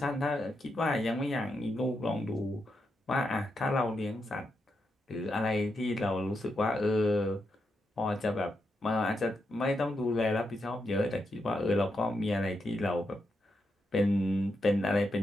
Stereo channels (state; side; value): normal; both; correlation 0.84